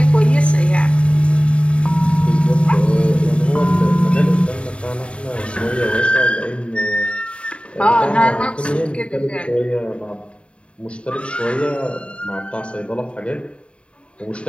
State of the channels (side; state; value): right; late; 0.058 ms